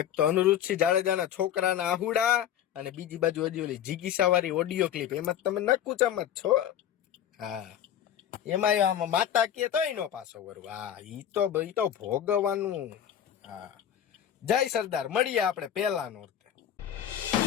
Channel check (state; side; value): quieter; right; 10.2 dB